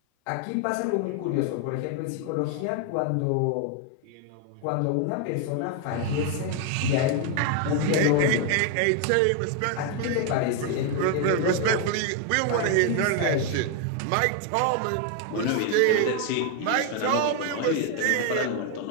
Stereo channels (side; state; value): both; different; correlation 0.01